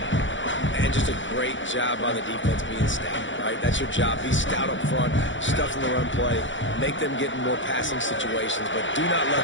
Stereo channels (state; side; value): late; right; 0.55 ms